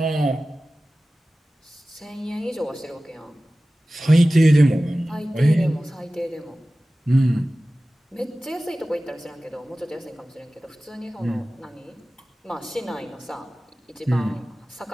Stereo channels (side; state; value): both; normal; correlation 0.96